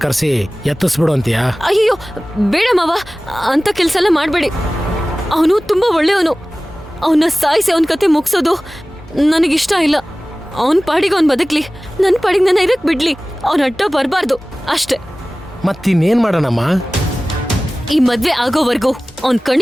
ಕರೆಸಿ ಎತ್ತಿಸ್ಬಿಡು ಅಂತೀಯ? ಅಯ್ಯೋ ಬೇಡ ಮಾವ, ಅಂತ ಕೆಲ್ಸ ಎಲ್ಲ ಮಾಡ್ಬೇಡಿ. ಅವನು ತುಂಬಾ ಒಳ್ಳೆಯವನು. ಅವನ್ನ ಸಾಯಿಸಿ ಅವನ ಕತೆ ಮುಗಿಸೋದು ನನಗಿಷ್ಟ ಇಲ್ಲ. ಅವನ್ ಪಾಡಿಗೆ ಅವ್ನ್ ಬದುಕ್ಲಿ, ನನ್ ಪಾಡಿಗೆ ನನ್ನ ಇರಕ್ ಬಿಡ್ಲಿ. ಅವನ ಅಡ್ಡ ಬರ್ಬಾರ್ದು ಅಷ್ಟೇ. ಮತ್ತಿನ್ನೇನ್ ಮಾಡೋಣಮ್ಮ? ಈ ಮದ್ವೆ ಆಗೋವರೆಗೂ ಅವನ್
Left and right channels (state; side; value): normal; both; correlation 0.97